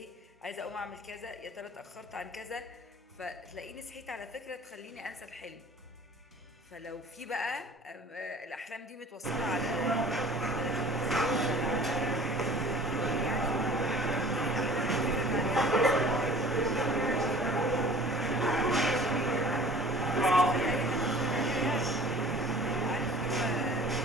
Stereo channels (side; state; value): both; normal; correlation 0.46